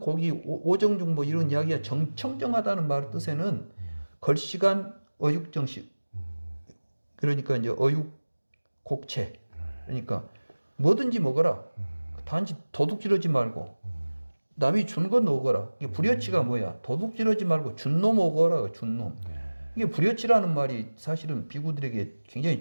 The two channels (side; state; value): both; inverted; correlation -1.00